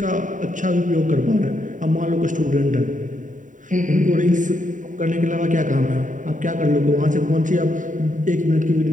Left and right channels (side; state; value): left; late; 0.37 ms